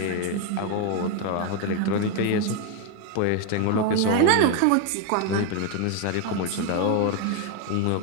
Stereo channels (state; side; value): different; both; correlation 0.01